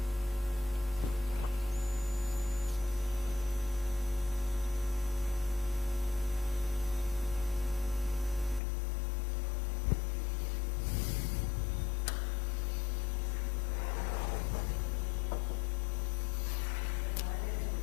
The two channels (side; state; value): right; drops out; at 8.6 s